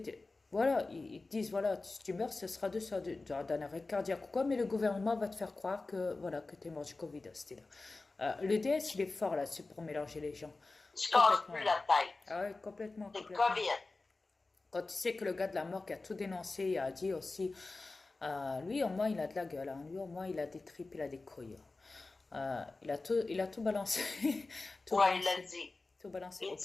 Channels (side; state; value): right; quieter; 3.5 dB